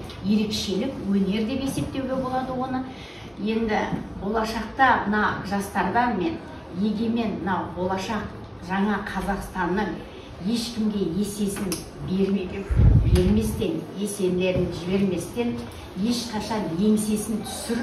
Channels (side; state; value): both; identical; correlation 1.00